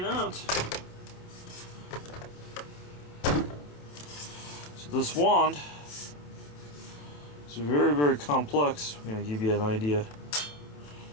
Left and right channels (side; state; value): right; late; 27 ms